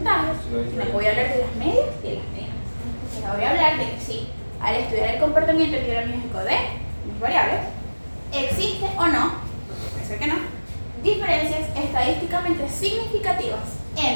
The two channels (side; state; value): both; inverted; correlation -1.00